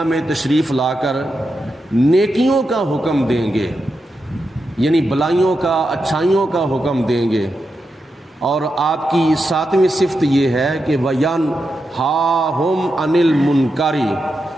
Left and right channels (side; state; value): both; normal; correlation 0.87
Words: میں تشریف لا کر نیکیوں کا حکم دیں گے، یعنی بلائیوں کا، اچھائیوں کا حکم دیں گے۔ اور آپ کی ساتویں صفت یہ ہے کہ وَيَنْهَاهُمْ عَنِ الْمُنْكَرِ،